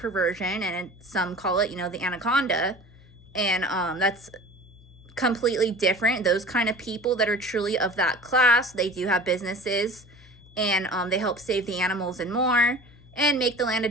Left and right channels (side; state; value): left; noise; hum, 24 dB below the sound